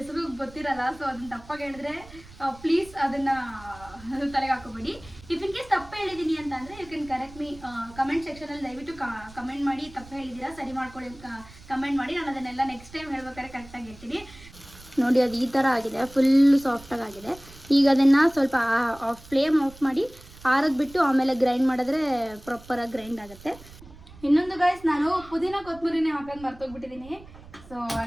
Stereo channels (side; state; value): right; noise; rumble, 20 dB below the sound